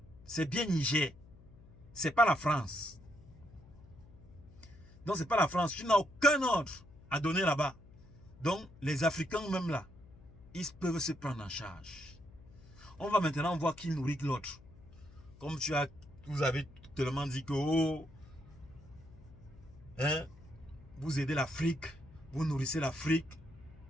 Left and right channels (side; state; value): left; noise; hum, 22 dB below the sound